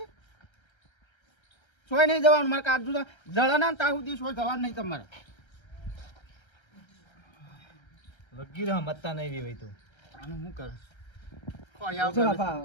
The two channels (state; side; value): late; right; 1.3 ms